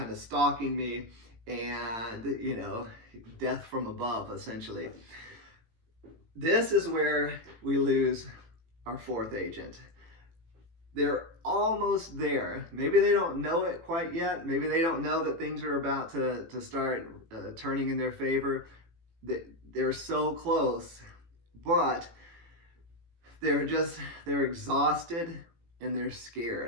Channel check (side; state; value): left; late; 18 ms